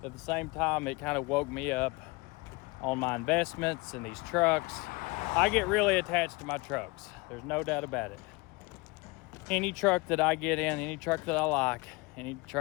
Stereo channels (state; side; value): quieter; right; 25.3 dB